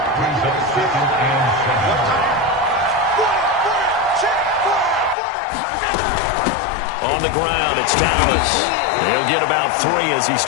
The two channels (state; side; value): drops out; right; at 5.2 s